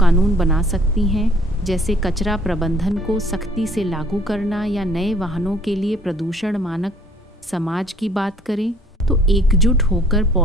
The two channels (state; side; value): normal; both; correlation 0.58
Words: बना सकती हैं, जैसे कचरा प्रबंधन को सख्ती से लागू करना या नए वाहनों के लिए प्रदूषण मानक। समाज की बात करें तो एकजुट होकर